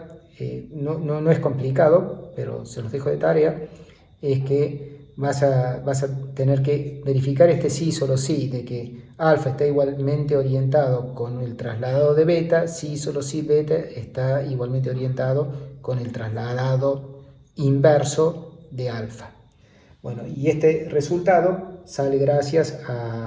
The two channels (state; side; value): identical; both; correlation 1.00